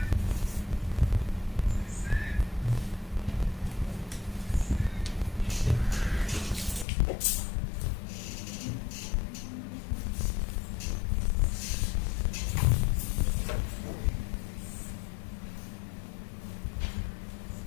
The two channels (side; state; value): right; drops out; at 6.9 s